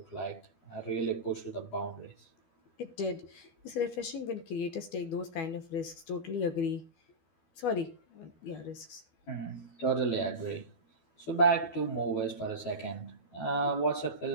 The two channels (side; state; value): right; late; 12 ms